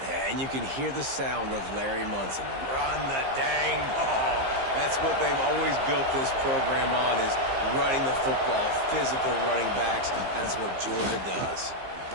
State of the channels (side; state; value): left; late; 15 ms